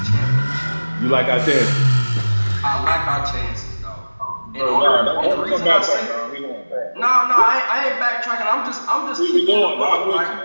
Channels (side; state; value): both; inverted; correlation -1.00